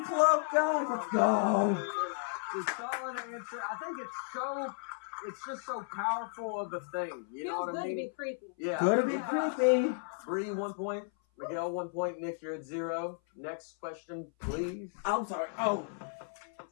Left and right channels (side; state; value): right; silent; 55 dB below the other